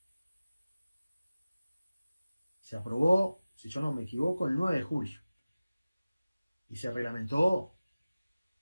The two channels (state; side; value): inverted; both; correlation -0.97